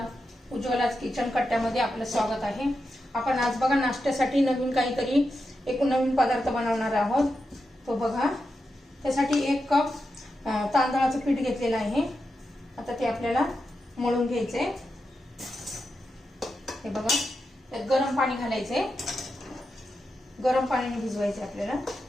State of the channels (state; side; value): normal; both; correlation 0.88